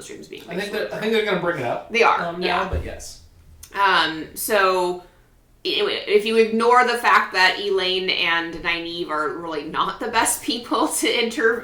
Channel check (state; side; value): identical; both; correlation 1.00